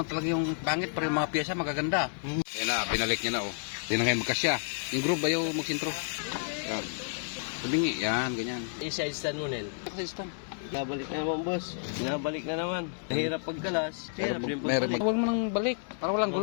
lang talaga yung pangit, pero yung mga piyesa magaganda. Ayan na, binalik niya na oh. Yan na ngayon magkasya. Yung group ayaw magsintro. Yan. Sabingi, yan, ganyan. I-side stand mo, Nel. Kasi stand. Nabalik na naman, boss. Nabalik na naman. Mahirap pagkalas. Mahirap din pagbalik. Huwag mo nang balik, para walang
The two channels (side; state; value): right; silent; 57 dB below the other